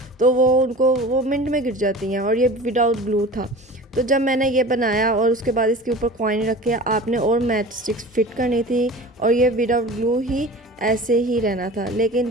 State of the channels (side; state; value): both; normal; correlation 0.38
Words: तो वो मिनट में गिर जाती हैं, और ये विदाउट ग्लू था। तो जब मैंने ये बनाया और उसके बाद इसके ऊपर कॉइन रखे, आपने और मैच स्टिक्स फिट करनी थी, और ये विदाउट ग्लू ही ऐसे ही रहना था। लेकिन